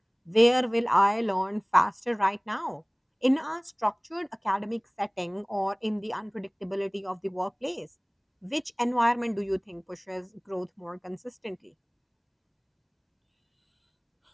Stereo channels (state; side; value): identical; both; correlation 1.00